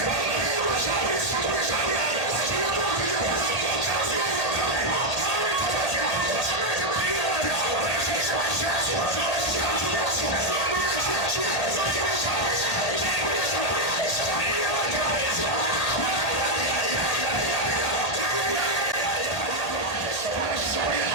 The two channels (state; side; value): late; right; 1.8 ms